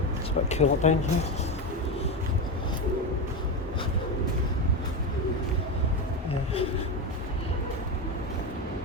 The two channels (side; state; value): both; normal; correlation 0.15